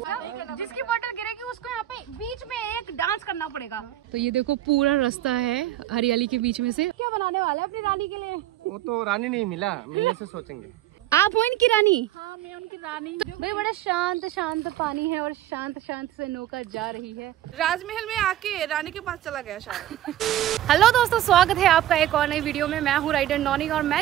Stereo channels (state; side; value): quieter; left; 13.1 dB